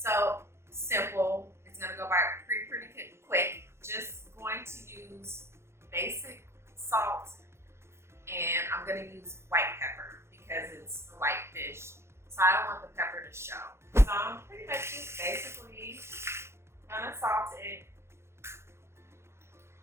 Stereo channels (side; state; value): left; late; 0.13 ms